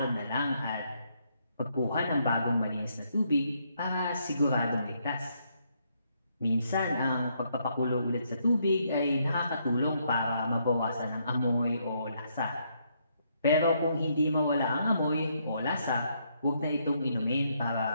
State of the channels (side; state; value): both; inverted; correlation -0.74